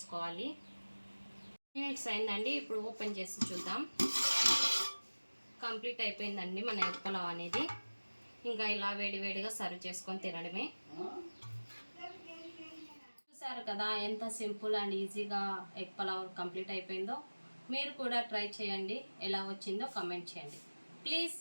మినిట్స్ అయిందండి. ఇప్పుడు ఓపెన్ చేసి చూద్దాం. కంప్లీట్ అయిపోయిందండి మన ఎగ్ పులావ్ అనేది. ఇంకా ఇలా వేడివేడిగా సర్వ్ చేసుకొని తినడమే. చూసారు కదా ఎంత సింపుల్ అండ్ ఈజీగా ఎగ్ పులావ్ కంప్లీట్ అయిపోయిందో. మీరు కూడా ట్రై చేయండి. ఎలా వచ్చిందో కామెంట్ చేయండి. Please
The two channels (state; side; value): inverted; both; correlation -1.00